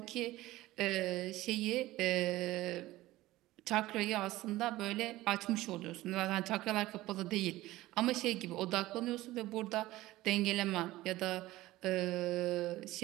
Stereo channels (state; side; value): quieter; left; 17.2 dB